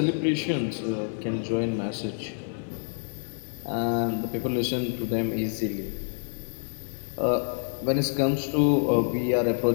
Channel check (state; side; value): silent; right; digital silence